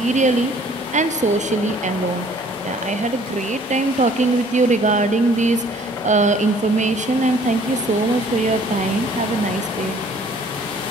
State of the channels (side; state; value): both; normal; correlation 0.56